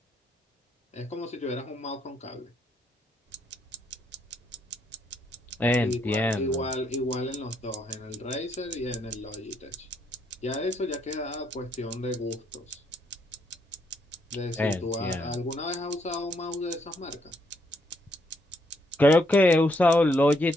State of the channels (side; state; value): both; normal; correlation 0.74